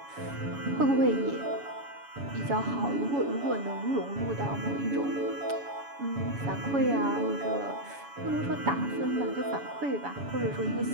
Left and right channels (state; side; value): late; left; 7.1 ms